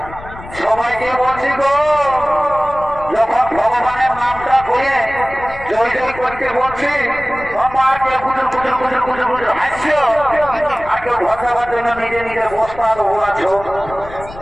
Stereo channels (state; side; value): noise; left; rumble, 16 dB below the sound